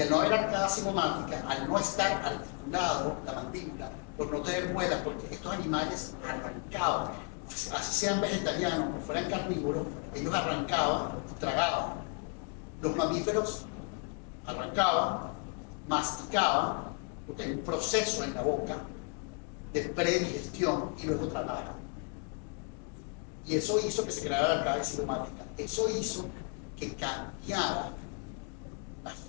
al no haber arcada cigomática, al no estar articulado la mandíbula, por no tener muelas, porque estos animales arrancaban, así sean vegetarianos o fueran carnívoros, ellos arrancaban y tragaban. Los mamíferos arrancaban, masticaban, porque hay un proceso en la boca de predigestión y luego tragaban. Y eso hizo que se creara la arcada cigomática. Eso hizo que cambiara la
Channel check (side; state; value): right; quieter; 36.7 dB